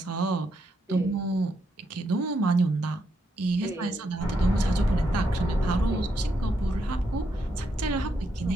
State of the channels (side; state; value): both; normal; correlation 0.79